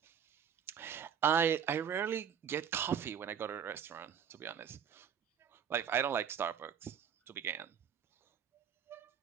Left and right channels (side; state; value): left; quieter; 8.1 dB